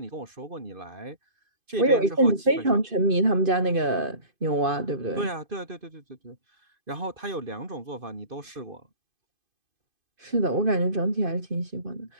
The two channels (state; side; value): late; left; 2.5 ms